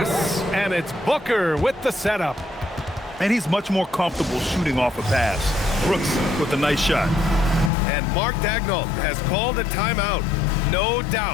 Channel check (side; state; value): right; drops out; at 7.7 s